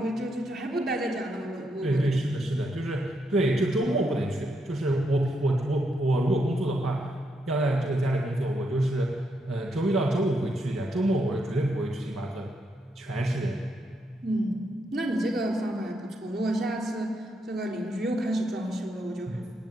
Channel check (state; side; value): normal; both; correlation 0.79